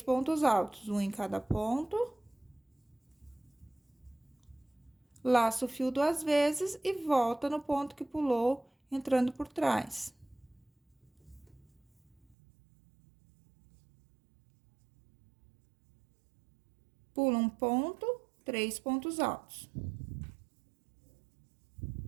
pontos altos, um em cada ponto. Laça o fio 2 vezes e volta no ponto que pulou, entrando por trás. Pula um ponto, 3 pontos altos.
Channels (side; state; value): left; drops out; at 12.4 s